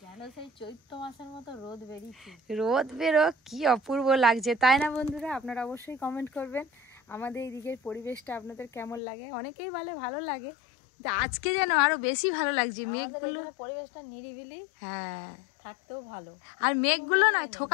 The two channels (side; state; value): right; drops out; at 9.0 s